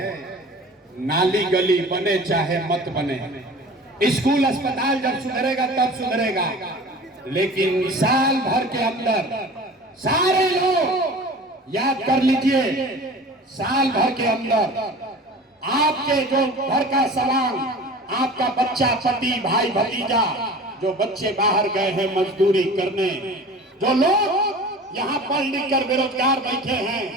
नाली गली बने चाहे मत बने, स्कूल अस्पताल जब सुधरेगा तब सुधरेगा, लेकिन साल भर के अंदर सारे लोग याद कर लीजिए, साल भर के अंदर आपके जो घर का सामान, आपका बच्चा, पति, भाई, भतीजा, जो बच्चे बाहर गए हैं मजदूरी करने, जो लोग यहाँ पढ़ लिख कर बेरोजगार बैठे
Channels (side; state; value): both; normal; correlation 0.40